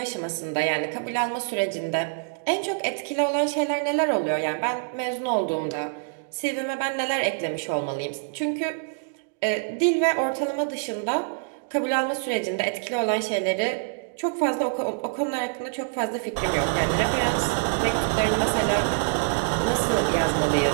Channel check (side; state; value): left; silent; digital silence